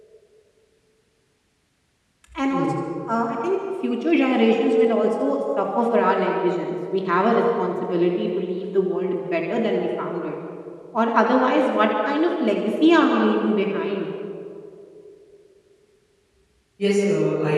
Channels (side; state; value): both; identical; correlation 1.00